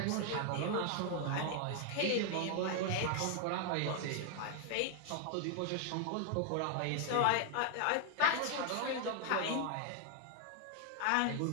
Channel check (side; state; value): both; different; correlation 0.00